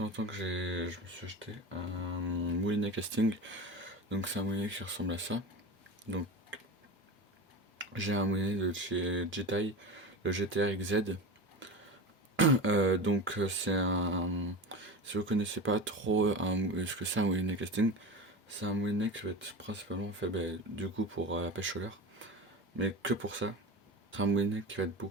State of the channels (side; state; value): both; normal; correlation 0.27